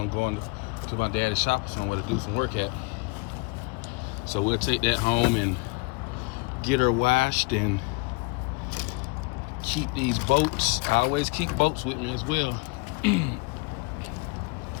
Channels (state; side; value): quieter; right; 27.5 dB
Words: going to my daddy's shop or somewhere to do some work at. So we'll take that home and get her washed and keep these boats. I always keep boats with me as well.